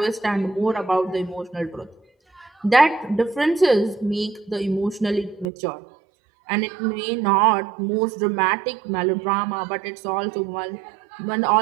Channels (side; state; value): left; drops out; at 5.5 s